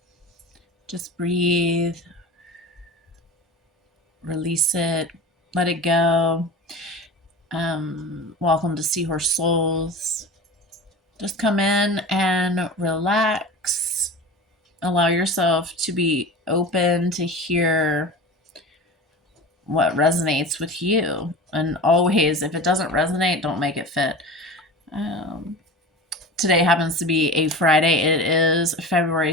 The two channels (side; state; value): both; normal; correlation 0.33